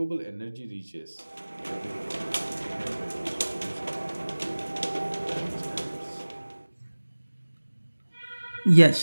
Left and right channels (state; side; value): inverted; both; correlation -1.00